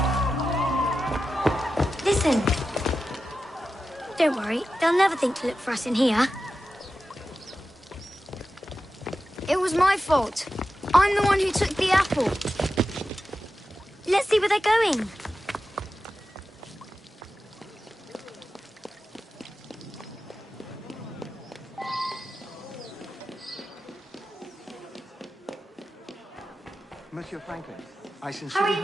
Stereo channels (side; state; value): both; normal; correlation 0.92